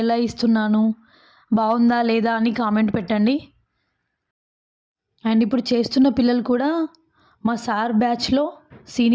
ఇస్తున్నాను, బాగుందా లేదా అని కామెంట్ పెట్టండి. అండ్ ఇప్పుడు చేస్తున్న పిల్లలు కూడా మా సార్ బ్యాచ్లో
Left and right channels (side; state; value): both; identical; correlation 1.00